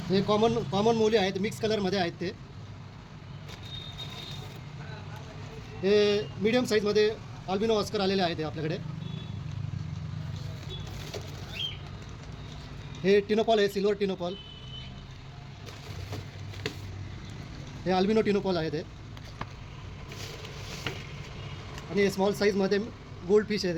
हे कॉमन मोली आहेत, मिक्स कलरमध्ये आहेत. हे मीडियम साईजमध्ये अल्बिनो ऑस्कर आलेले आहेत आपल्याकडे. हे टिनोपॉल आहे, सिल्वर टिनोपॉल. हे अल्बिनो टिनोपॉल आहेत. आणि स्मॉल साईजमध्ये गोल्ड फिश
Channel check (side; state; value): both; identical; correlation 1.00